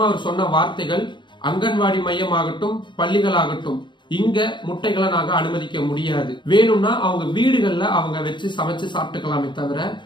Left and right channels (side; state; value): right; late; 0.23 ms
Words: அவர் சொன்ன வார்த்தைகள், அங்கன்வாடி மையம் ஆகட்டும், பள்ளிகள் ஆகட்டும், இங்க முட்டைகளை நாங்க அனுமதிக்க முடியாது. வேணும்னா அவங்க வீடுகள்ல அவங்க வச்சு சமைச்சு சாப்பிட்டுக்கலாமே தவிர